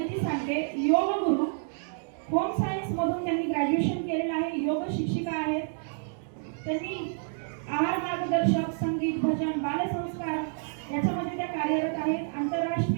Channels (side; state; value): left; silent; digital silence